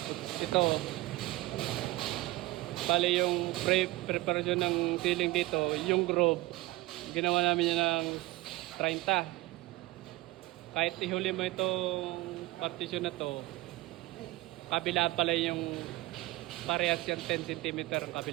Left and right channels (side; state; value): left; quieter; 19.4 dB